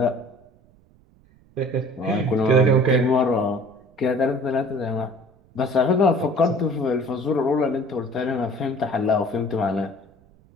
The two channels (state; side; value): noise; right; rumble, 30 dB below the sound